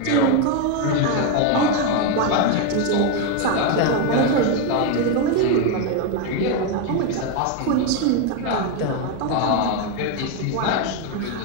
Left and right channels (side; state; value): both; different; correlation 0.02